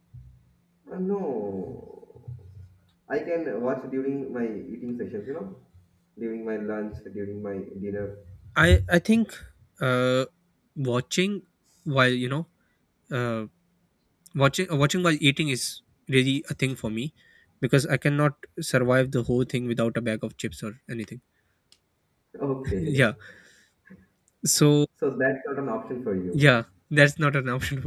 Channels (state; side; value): identical; both; correlation 1.00